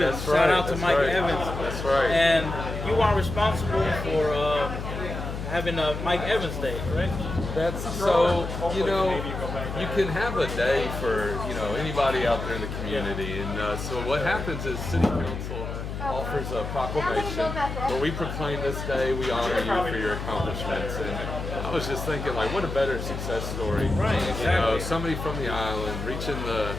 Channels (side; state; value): left; noise; hum, 6 dB below the sound